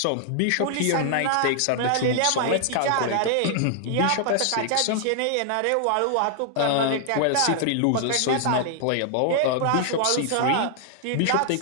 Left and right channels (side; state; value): both; different; correlation -0.01